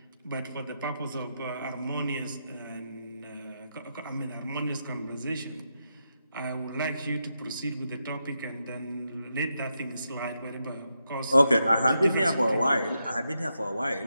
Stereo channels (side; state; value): both; inverted; correlation -0.84